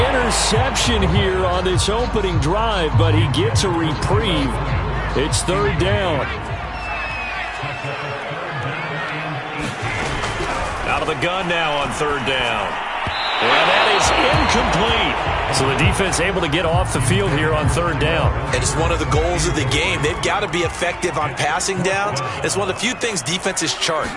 interception here on this opening drive, but he gets a reprieve. It's third down. Out of the gun now on third down. And that is incomplete. So the defense able to get off the field here on third down. And it's one of the goals of the game. They've got to be effective on passing downs. It's one of the few things defenses chart.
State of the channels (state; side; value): identical; both; correlation 1.00